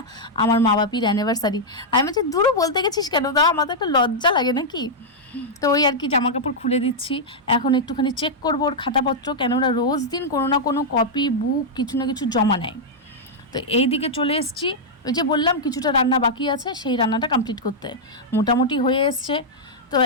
আমার মা বাপির অ্যানিভার্সারি। আমি বলছি দূরও বলতে গেছিস কেন, তা আমাদের একটা লজ্জা লাগে নাকি। তো ওই আর কি জামা কাপড় খুলে দিচ্ছি, এখন একটুখানি চেক করবো ওর খাতাপত্র, কেন ওরা রোজ দিন কোনো না কোনো কপি বুক কিছু না কিছু জমা নেয়। তো এই দিকে চলে এসেছি, ওই যে বললাম কিছুটা রান্না বাকি আছে, সেই রান্নাটা কমপ্লিট করতে মোটামুটি হয়ে এসছে। তো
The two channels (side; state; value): both; normal; correlation -0.05